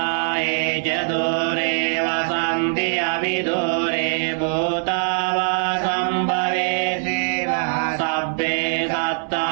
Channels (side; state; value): left; silent; 64 dB below the other